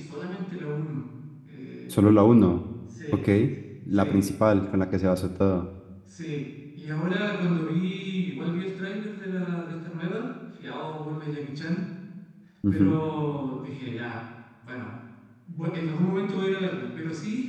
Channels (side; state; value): both; identical; correlation 1.00